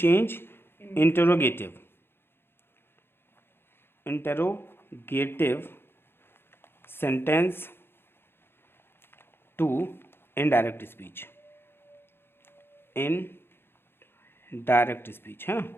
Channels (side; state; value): right; late; 0.11 ms